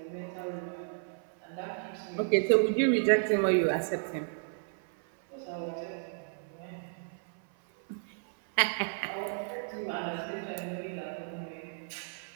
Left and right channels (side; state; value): left; silent; 56 dB below the other